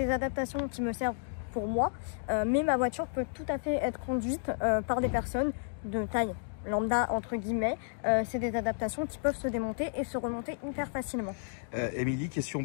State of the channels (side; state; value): right; silent; digital silence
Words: adaptations qui me servent pour moi, mais ma voiture peut tout à fait être conduite par des personnes de taille lambda entre guillemets. C'est des adaptations qui peuvent se démonter et se remonter hyper facilement. Émilie, question